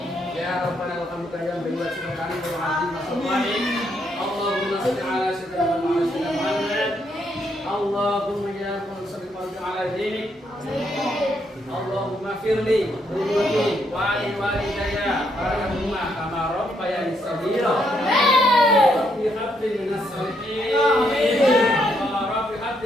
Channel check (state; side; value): normal; both; correlation 0.75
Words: Ya rabbana lakal hamdu ya bi wajhika karim wa azim masallim. Allahumma shalli ala sayyidina Muhammad. Allahumma ya salli ala dinik. Allahumma firli wali walidayya warhamhuma kama rabbayani shaghira. Rabbi habli minas shalihin. Rabbi